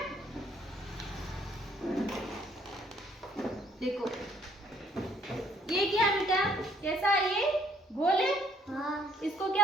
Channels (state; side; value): normal; both; correlation 0.64